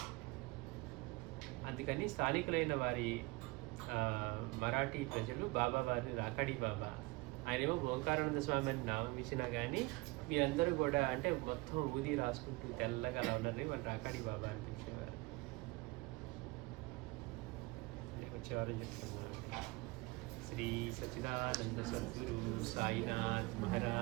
అందుకని స్థానికులైన వారి మరాఠీ ప్రజలు బాబా వారిని రాకాడి బాబా, ఆయనేమో ఓంకారానంద స్వామి అని నామం ఇచ్చినా కానీ మీరందరూ కూడా అంటే మొత్తం ఊది రాసుకుంటూ తెల్లగా అలా ఉన్నారని వాళ్ళు రాకాడి బాబా అనిపించేవారు. వచ్చేవారు చెప్తున్నారు. శ్రీ సచ్చిదానంద సద్గురు సాయినాథ్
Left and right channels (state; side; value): quieter; left; 23.4 dB